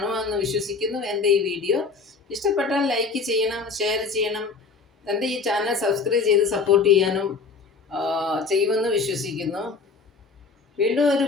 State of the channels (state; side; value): quieter; right; 4.7 dB